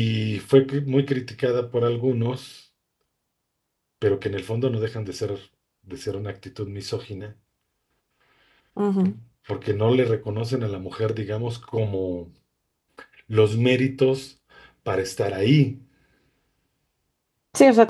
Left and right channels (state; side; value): identical; both; correlation 1.00